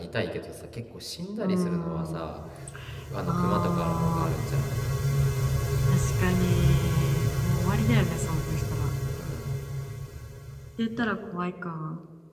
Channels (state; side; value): identical; both; correlation 1.00